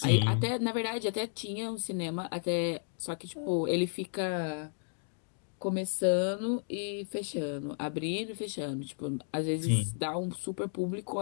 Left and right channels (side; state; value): right; silent; digital silence